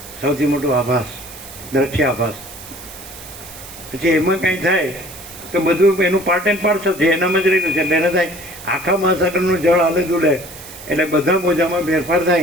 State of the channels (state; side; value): noise; right; hiss, 15 dB below the sound